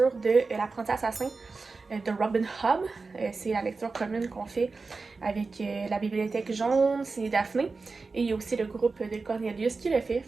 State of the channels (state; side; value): quieter; left; 4.1 dB